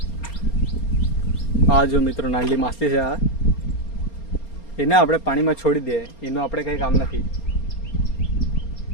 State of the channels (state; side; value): late; right; 4.3 ms